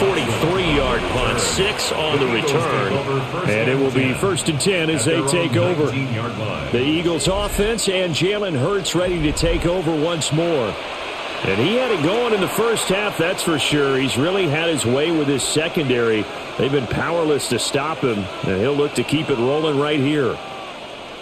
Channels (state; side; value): identical; both; correlation 1.00